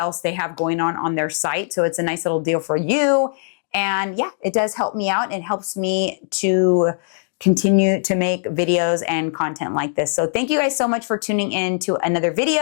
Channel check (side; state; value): right; silent; digital silence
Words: they have going on their site. So it's a nice little deal for you. And yeah, it does help me out. It helps me to continue to make videos and content like this. So thank you guys so much for tuning in to another